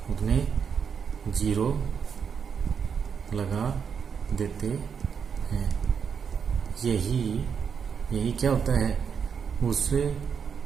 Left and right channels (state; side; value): quieter; left; 6.8 dB